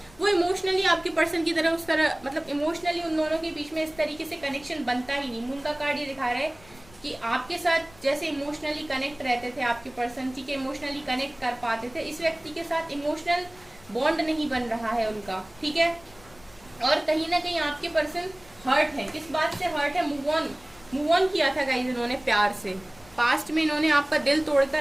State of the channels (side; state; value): left; noise; rumble, 25 dB below the sound